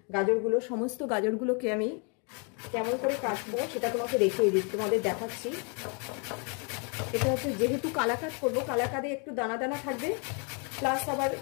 গাজরগুলো, সমস্ত গাজরগুলোকে আমি কেমন করে কাটবো সেটা তোমাকে দেখিয়ে দিচ্ছি, তোমাদের দেখাচ্ছি। এটা হচ্ছে যেহেতু কালাকাঁদ করবো, কালাকাঁদে একটু দানা দানা থাকবে, প্লাস আবার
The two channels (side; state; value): right; quieter; 37.0 dB